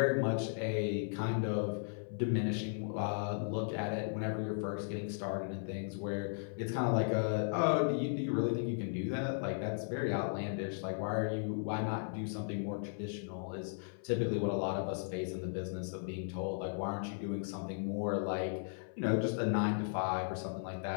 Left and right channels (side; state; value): right; silent; 54 dB below the other